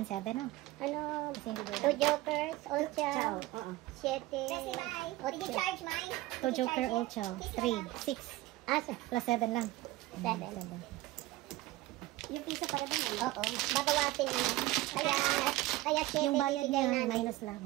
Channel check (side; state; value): left; quieter; 17.9 dB